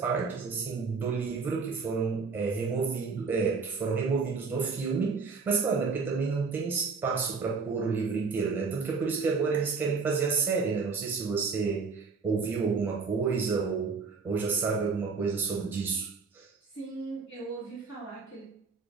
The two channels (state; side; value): quieter; left; 4.8 dB